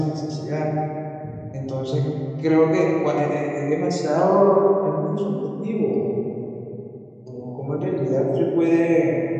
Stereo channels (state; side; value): identical; both; correlation 1.00